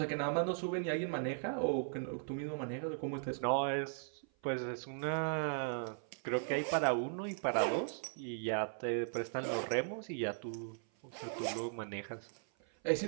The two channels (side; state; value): left; silent; 52 dB below the other